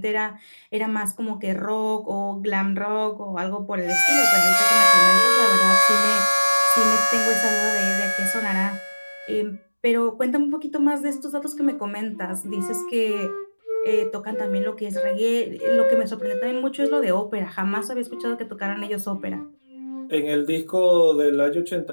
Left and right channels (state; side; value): inverted; both; correlation -1.00